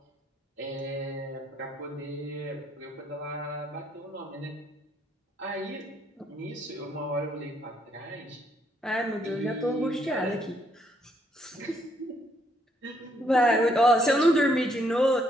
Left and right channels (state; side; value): normal; both; correlation 0.71